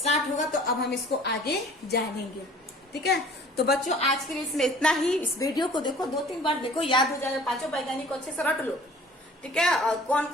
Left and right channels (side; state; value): both; normal; correlation 0.49